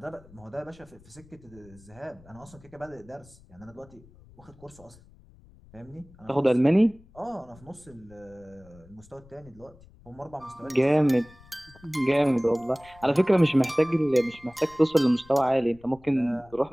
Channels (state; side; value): noise; left; rumble, 25 dB below the sound